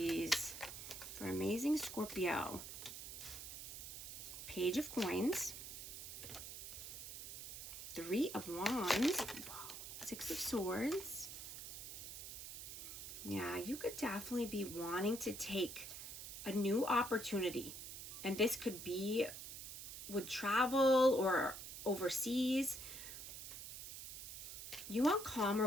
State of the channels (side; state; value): right; noise; hiss, 9 dB below the sound